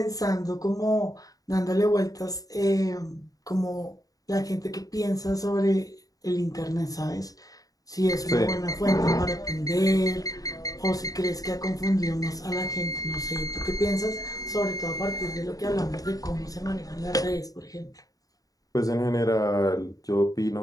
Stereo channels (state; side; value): late; right; 0.18 ms